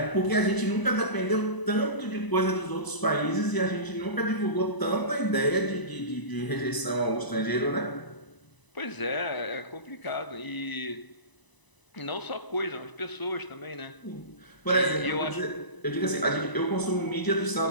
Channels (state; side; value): late; right; 1.0 ms